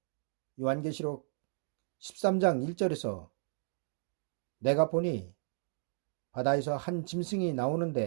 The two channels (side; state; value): left; silent; digital silence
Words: 요한계시록 13장 1절에서 내가 보니 바다에서 한 짐승이